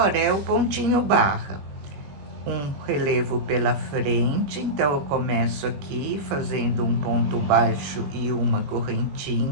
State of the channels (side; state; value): left; late; 21 ms